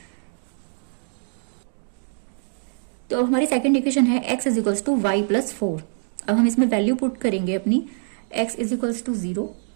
तो हमारी सेकंड इक्वेशन है x = y + 4. अब हम इसमें वैल्यू पुट करेंगे अपनी. x = 0,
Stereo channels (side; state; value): left; silent; digital silence